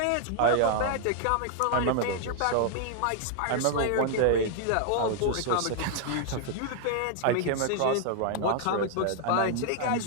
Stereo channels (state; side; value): different; both; correlation 0.00